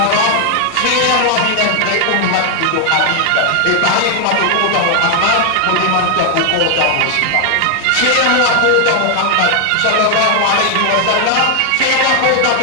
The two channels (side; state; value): both; different; correlation 0.00